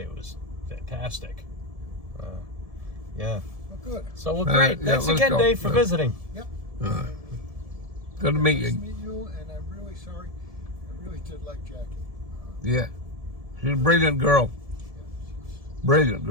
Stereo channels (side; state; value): left; late; 1.7 ms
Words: It was fantastic. Yeah. Well, good. So well, Alright, great. yeah, Thanks let's again, go. Dave, for Yeah. visiting. Yep. Good to meet Nice to you. meet you, and I'm really sorry. I really did like Jackie. Yeah. She's a brilliant girl. Yeah, she's, Brilliant